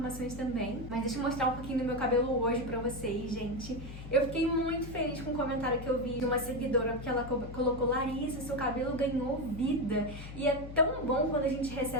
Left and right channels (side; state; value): left; noise; hum, 11 dB below the sound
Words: também. Mas deixa eu mostrar um pouquinho do meu cabelo hoje pra vocês, gente. Eu fiquei muito feliz com o comentário que eu vi de uma seguidora, porque ela colocou: Larissa, seu cabelo ganhou vida. E é tão bom quando a gente